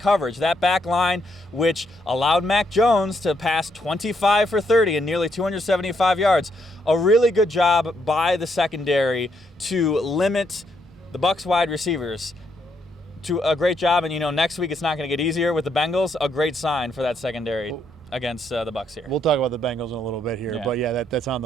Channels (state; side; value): normal; both; correlation 0.75